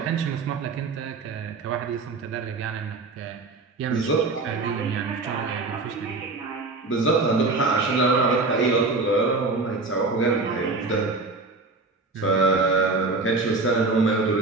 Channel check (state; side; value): quieter; left; 3.7 dB